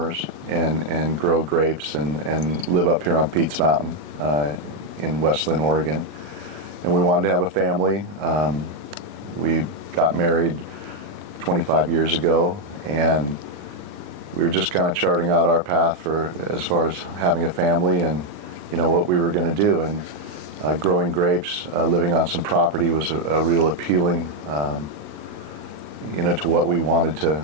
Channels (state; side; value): late; left; 39 ms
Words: and grow grapes and live up here on Pete's Mountain in West Linn, Oregon. And we wanted to have a family. We got married 25 years ago, and we were just kind of charting out our path for as far as having a family and what we were going to do. And growing grapes, living on some property was a real appealing to what we wanted